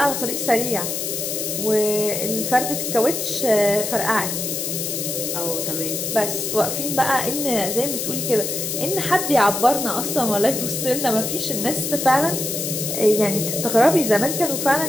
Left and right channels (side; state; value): left; noise; hiss, 3 dB below the sound